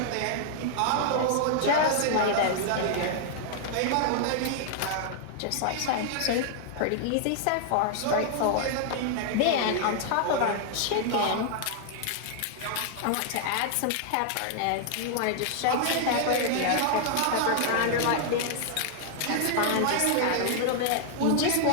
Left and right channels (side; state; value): both; different; correlation -0.01